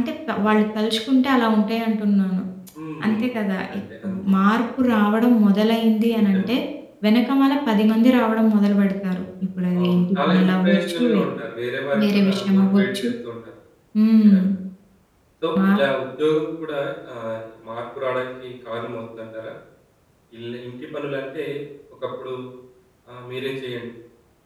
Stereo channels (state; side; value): identical; both; correlation 1.00